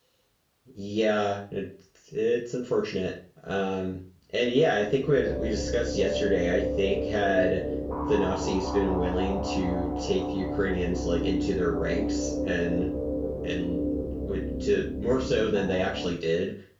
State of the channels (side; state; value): both; identical; correlation 1.00